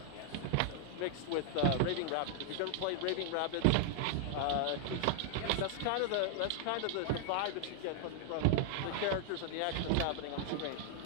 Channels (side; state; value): both; different; correlation 0.00